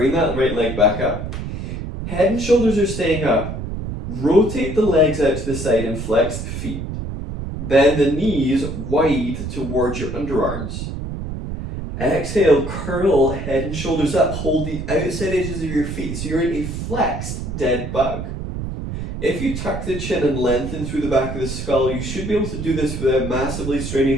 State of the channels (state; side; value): noise; right; rumble, 6 dB below the sound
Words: that right leg back up. Head and shoulders are staying up. Rotate the legs out to the side and flex the feet. Bend the knees wide towards your underarms. Exhale, curl head and shoulders up. Hold the outside edges of your feet so you're in a flexed dead bug. If you tuck the chin and lengthen through the back of the skull, you should be able to do this without massively